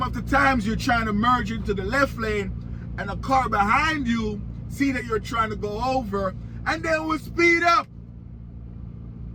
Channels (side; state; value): both; identical; correlation 1.00